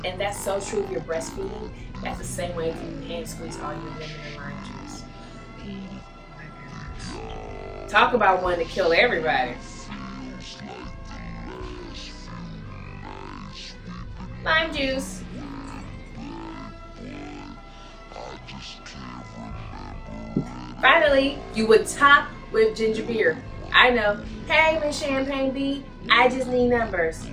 and that's so true if you're breastfeeding. That's the same way if you hand squeeze all your lemon and lime juice. Talk about one to kill everybody. Lime juice. Finally, you would top with ginger beer. I know. Hey, Misschampagneb, I just need numbers.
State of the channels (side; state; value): both; identical; correlation 1.00